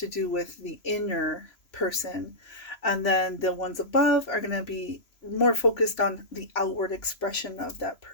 do with the inner person. And then the ones above are going to be more focused on the outward expression of that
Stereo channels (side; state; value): right; late; 3.0 ms